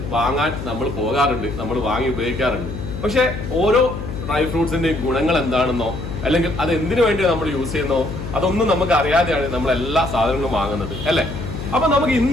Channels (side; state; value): left; noise; hum, 7 dB below the sound